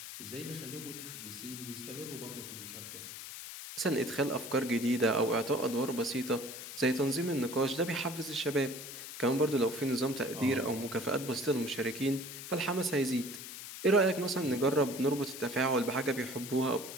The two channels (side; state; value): left; noise; hiss, 10 dB below the sound